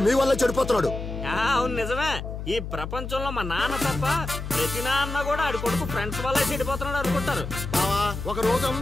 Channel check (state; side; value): noise; left; hum, 7 dB below the sound